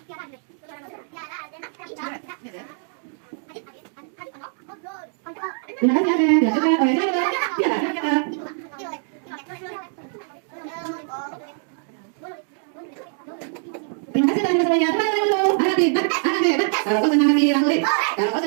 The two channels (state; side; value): silent; left; 56 dB below the other